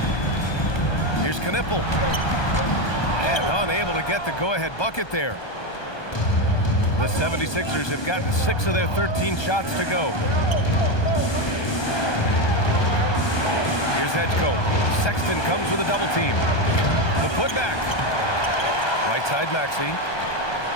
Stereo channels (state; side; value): late; right; 1.2 ms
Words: Here's Knippel. And unable to get the go-ahead bucket there. The 76ers have gotten 6 of their 13 shots to go. Here's Edgecombe. Sexton comes with a double team. The putback. Right side Maxey.